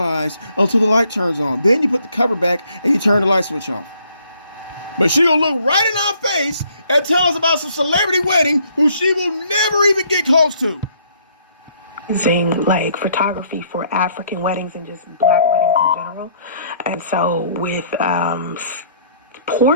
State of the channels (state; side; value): inverted; both; correlation -0.64